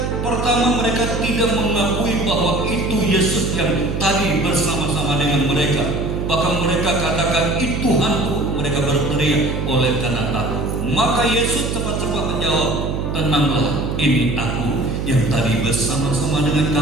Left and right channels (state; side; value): noise; right; hum, 2 dB below the sound